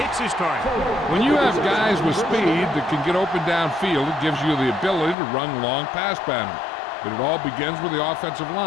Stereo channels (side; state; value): right; drops out; at 5.2 s